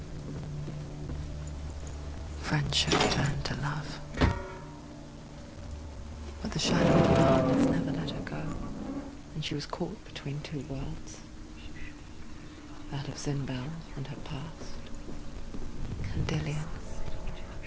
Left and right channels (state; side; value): identical; both; correlation 1.00